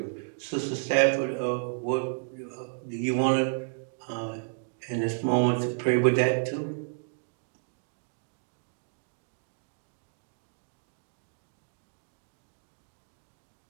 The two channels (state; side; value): silent; left; digital silence